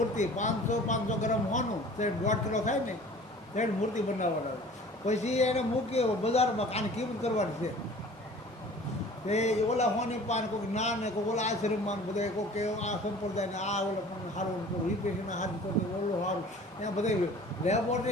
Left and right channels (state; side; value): normal; both; correlation 0.46